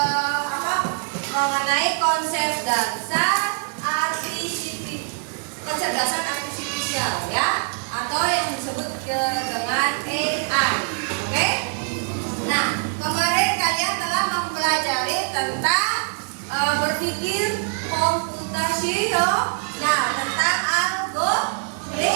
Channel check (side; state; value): left; silent; 56 dB below the other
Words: mengenai konsep dasar kecerdasan artifisial ya, atau yang disebut dengan AI. Oke? Nah, kemarin kalian telah mempelajari tentang berpikir komputasional. Nah, tentang